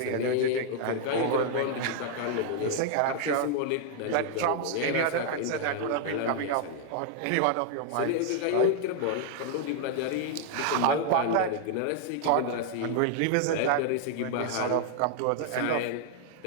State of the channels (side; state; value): both; different; correlation 0.00